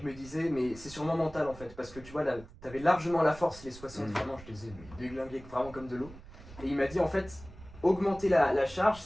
me disait, mais c'est sûrement mental en fait, parce que tu vois, là, t'avais largement la force, les 60, vraiment, je les ai déglingués vraiment comme de l'eau. Et il m'a dit, en fait, augmenter la charge,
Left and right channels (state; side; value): noise; right; rumble, 18 dB below the sound